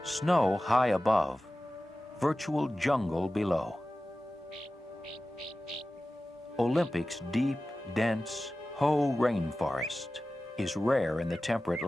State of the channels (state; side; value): normal; both; correlation 0.95